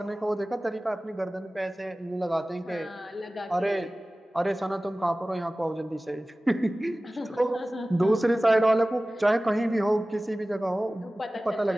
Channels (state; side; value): normal; both; correlation 0.97